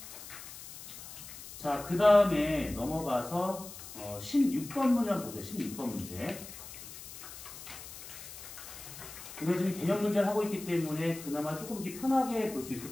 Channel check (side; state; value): left; noise; hiss, 13 dB below the sound